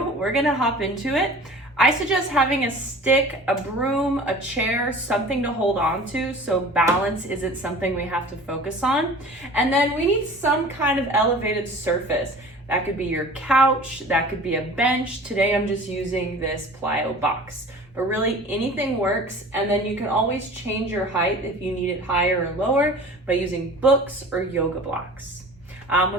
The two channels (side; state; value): both; normal; correlation 0.42